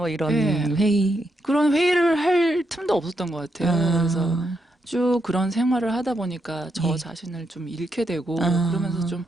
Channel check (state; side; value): normal; both; correlation 0.81